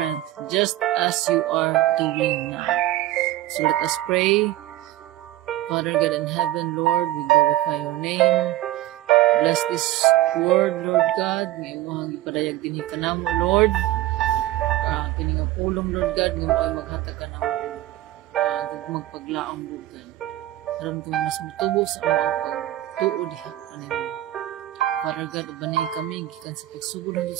just as you are doing now. So, let us pray. Father God in heaven, Lord, we glorify your name. Bless this word, Lord God. Ngayon mo ang ipadayag din ka na mo, Lord. Kini nga pulong, Lord God. Ngayon mo ay maghatag ka na mo. Magpaglaang, Lord God. Karoon ko mas mutubo sa mga pagtuod. Father God, ubanay kami. Gikan sa pagsugod doon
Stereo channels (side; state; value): left; quieter; 15.2 dB